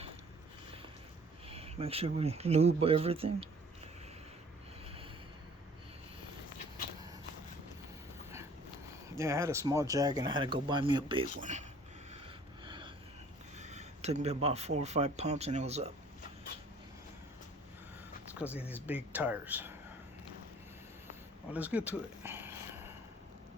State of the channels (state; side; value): normal; both; correlation 0.53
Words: Make sure we lube everything. Yeah, I had a small jack and I had to go buy me a big one. Took me about 4 or 5 pumps and it was up. It's because of these big tires. Well, let's get to it.